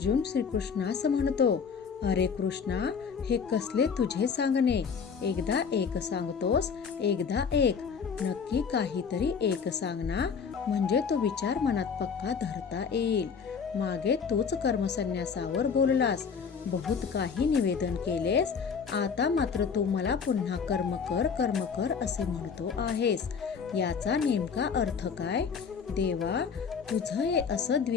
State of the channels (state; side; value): quieter; right; 6.1 dB